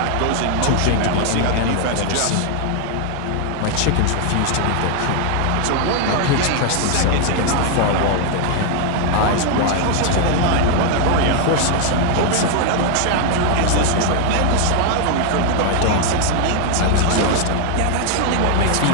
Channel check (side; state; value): both; different; correlation 0.00